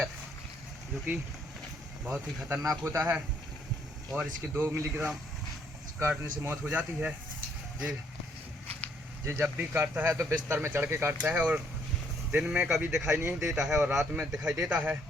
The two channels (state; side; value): normal; both; correlation 0.68